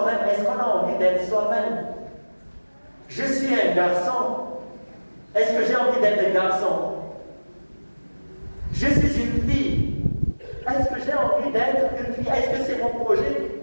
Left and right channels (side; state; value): both; inverted; correlation -1.00